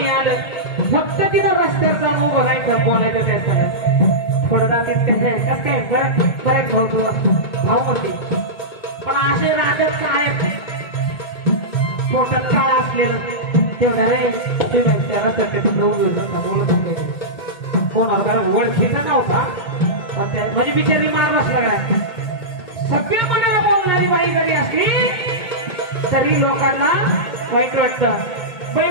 आलं, फक्त तिथं रस्त्यावर जाऊन उभं राहायचं, बोलायचं त्याचं. थोडं रात्रीत कसं काय बरेच भाऊ तू भाऊ होते, पण असे राजच काय पोटात काळ असलेलं तेवढा रे कोणाला ओळखीचा नव्हता, म्हणजे बिचारी मार बसला. सगळे मला बोलणारी बाई जरी असली तरी लोकांना वाईट वाटतं.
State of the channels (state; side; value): late; right; 1.8 ms